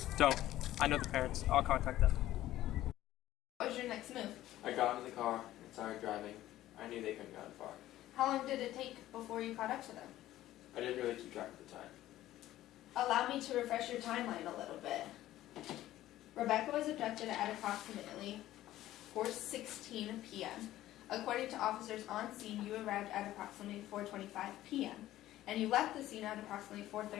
Don't. I know the parents. I'll contact them. What was your next move? I got into the car and started driving. I knew they couldn't have gotten far. How long did it take before you caught up to them? I didn't really keep track of the time. Allow me to refresh your timeline a little bit. Rebecca was abducted at approximately 4:16 p.m. According to officers on scene, you arrived at approximately 4:25 p.m. and you left the scene at approximately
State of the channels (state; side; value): quieter; right; 14.4 dB